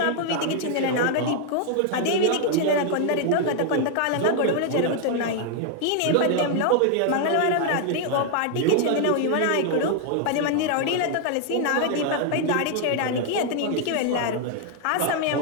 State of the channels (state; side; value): different; both; correlation 0.00